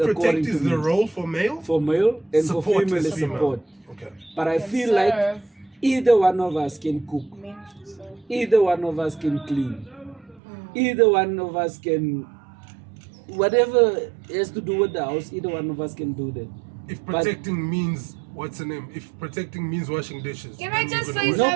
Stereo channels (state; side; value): drops out; left; at 10.4 s